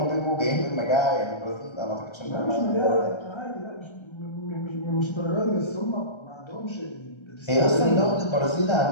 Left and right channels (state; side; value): late; right; 1.3 ms